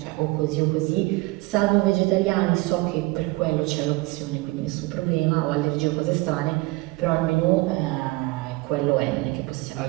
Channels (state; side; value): quieter; left; 22.9 dB